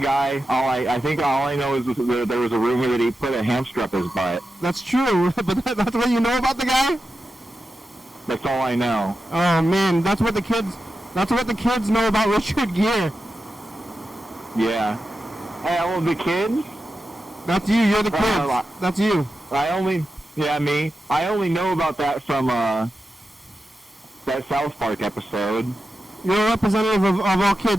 I think all I know is there was a rumor that he put a hamster up his butt. That's true, but that's what you know about the guy? That's all I know. Oh man, that's what the kids know about Richard Gere. Yeah. Hey, all of the kids? That's you. You're the kids. That's you. Me. I only know about that from that South Park episode. You're a representative of all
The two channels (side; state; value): both; normal; correlation 0.90